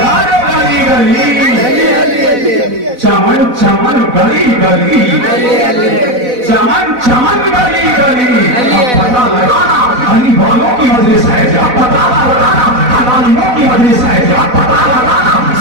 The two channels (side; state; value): left; late; 4.0 ms